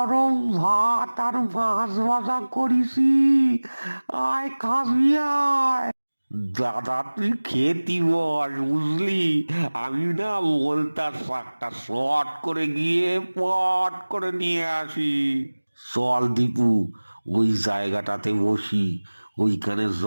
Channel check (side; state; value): both; inverted; correlation -1.00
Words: ভাত আর মাছ ভাজা করেছি। আয় খাবি আয়। দাদা, তুই খেতি বস, বুঝলি? আমি না বলতার শাকটা শর্ট করে গিয়ে পট করে নিয়ে আসি। চল দীপু, ওই জায়গাটাতে বসি, ওইখানে